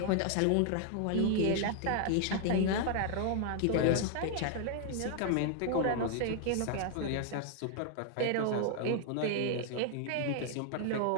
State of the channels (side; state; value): both; different; correlation 0.00